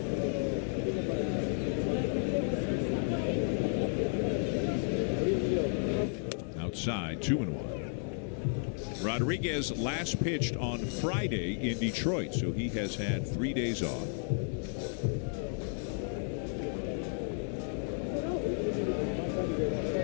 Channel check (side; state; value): right; silent; 56 dB below the other